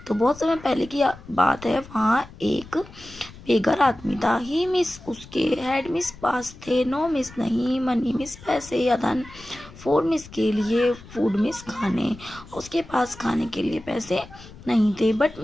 तो बहुत समय पहले की बात है, वहाँ एक बेघर आदमी था। ही मिस, उसके, हेड मिस पास थे, नो मिस नहीं, मनी मिस पैसे या धन, फोर मिस के लिए, फूड मिस खाने, उसके पास खाने के लिए पैसे नहीं थे। बट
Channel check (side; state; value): left; noise; rumble, 19 dB below the sound